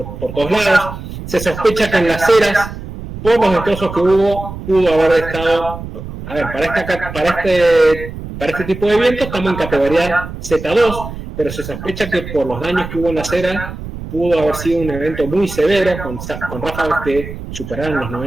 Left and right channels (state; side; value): noise; right; rumble, 10 dB below the sound